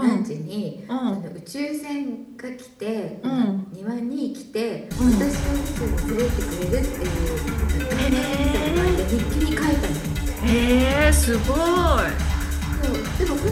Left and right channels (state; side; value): identical; both; correlation 1.00